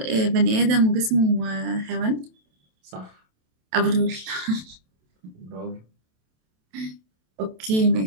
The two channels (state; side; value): late; left; 27 ms